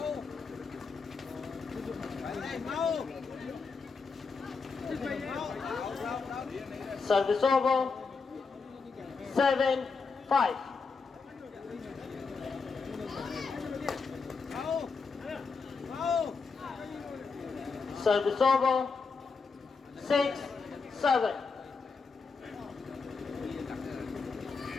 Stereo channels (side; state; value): right; quieter; 4.7 dB